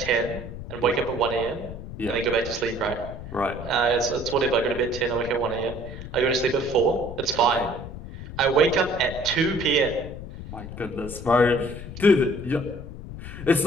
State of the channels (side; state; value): left; noise; rumble, 11 dB below the sound